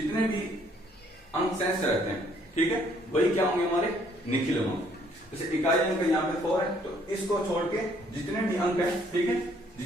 भी अंक शेष रहते हैं, ठीक है, वही क्या होंगे? हमारे निखिलम अंक। जैसे इकाई अंक यहाँ पे 4 है, तो इसको छोड़ के जितने भी अंक है, ठीक है,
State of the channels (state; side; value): normal; both; correlation 0.64